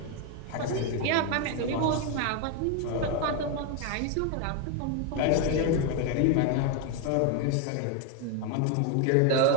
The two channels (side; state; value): both; different; correlation 0.01